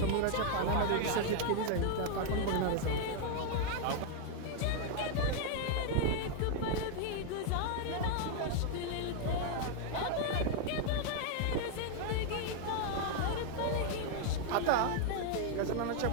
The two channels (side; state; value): both; different; correlation 0.00